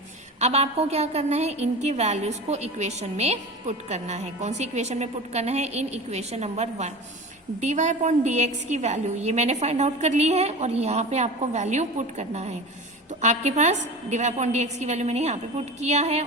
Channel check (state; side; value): normal; both; correlation 0.32